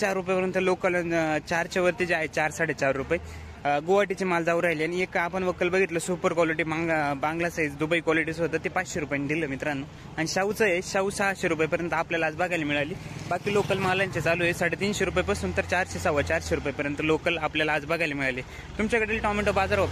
रुपयापर्यंत लोकल 4च्या वरती जे आहे 4 4.5 रुपये गुवाहाटीचे माल जाऊ राहिले. आणि एक आपण वक्कल बघितलं सुपर क्वालिटी बांगला साईज दुबई क्वालिटीचं होतं ते 500 रुपयांनी दिलं मित्रांनो. आणि शाहूचं आहे शाहू 600 रुपयेपर्यंत आपल्याला आज बघायला मिळाली. बाकी लोकल मालांचे चालू आहे 350 रुपयापासून तर 400 450 रुपयेपर्यंत लोकल आपल्याला आज बघायला मिळाले. तुमच्याकडील टोमॅटो बाजार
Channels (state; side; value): identical; both; correlation 1.00